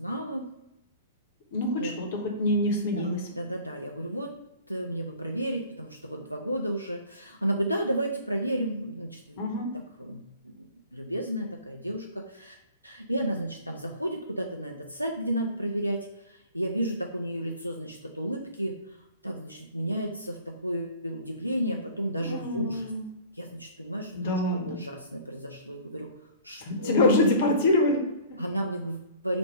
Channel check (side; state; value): both; inverted; correlation -0.49